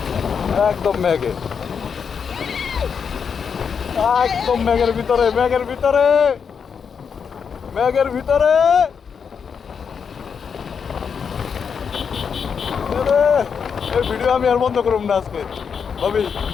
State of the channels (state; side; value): quieter; right; 6.5 dB